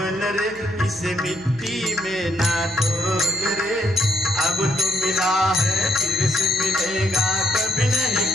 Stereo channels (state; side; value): noise; right; hum, 24 dB below the sound